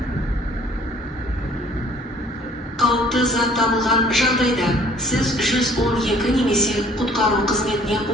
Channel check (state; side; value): normal; both; correlation 0.55